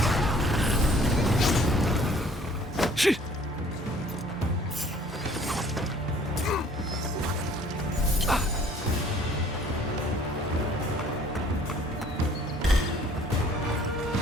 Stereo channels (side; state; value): both; normal; correlation 0.55